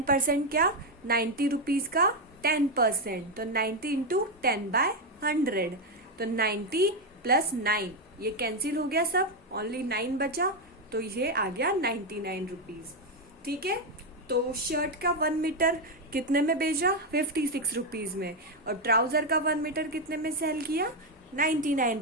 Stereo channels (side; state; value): both; normal; correlation 0.06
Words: क्या, 90 रुपीज का 10%, तो 90 इंटू 10/100। तो 90 प्लस 9, ये कैंसिल हो गया सब, ओनली 9 बचा, तो ये आ गया 99 रुपीज। ठीक है, तो शर्ट का 1 मीटर कितने में बेचा, 56 रुपीज में, और ट्राउजर का 1 मीटर कितने में सेल किया,